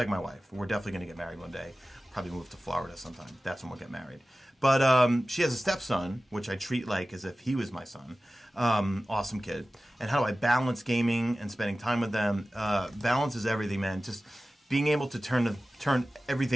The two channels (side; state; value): both; normal; correlation 0.96